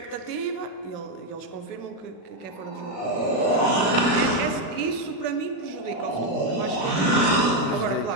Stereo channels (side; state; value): right; late; 36 ms